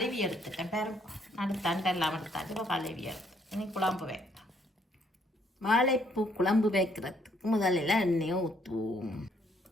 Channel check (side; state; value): both; normal; correlation 0.68